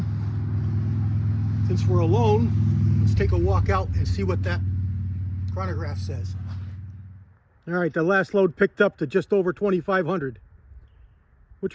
Since we're alone, let's take a walk out and see what that chronograph says. All right, the last load picked up to just over 2,500,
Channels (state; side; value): identical; both; correlation 1.00